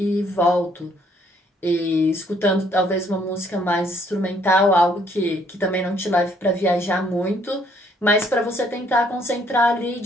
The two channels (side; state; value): both; normal; correlation 0.65